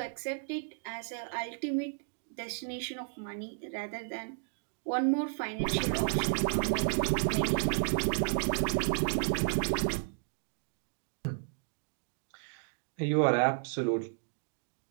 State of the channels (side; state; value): left; silent; digital silence